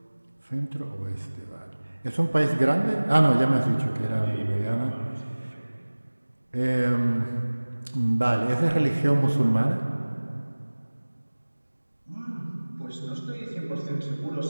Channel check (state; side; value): inverted; both; correlation -1.00